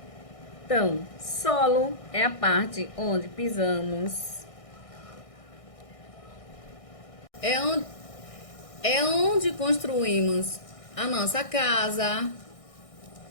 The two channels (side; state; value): right; late; 1.6 ms